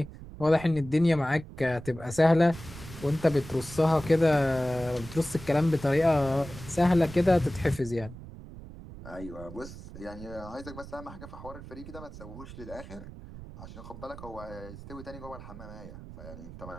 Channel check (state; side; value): noise; right; rumble, 14 dB below the sound